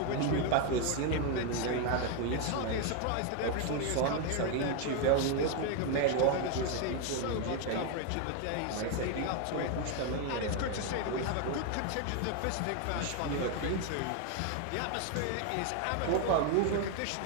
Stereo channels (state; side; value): different; both; correlation 0.01